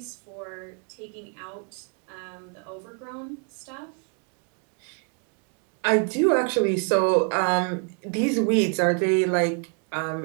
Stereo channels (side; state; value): left; quieter; 39.6 dB